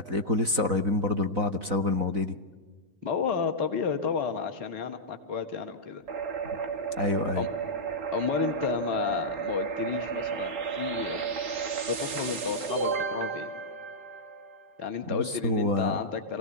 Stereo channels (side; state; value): left; late; 4.0 ms